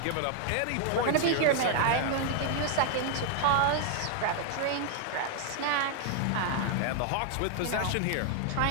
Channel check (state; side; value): different; both; correlation 0.00